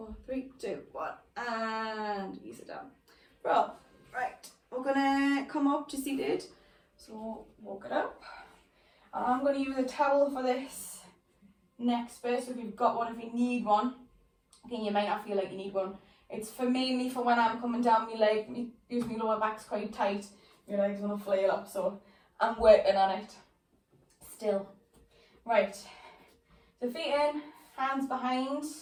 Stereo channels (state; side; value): identical; both; correlation 1.00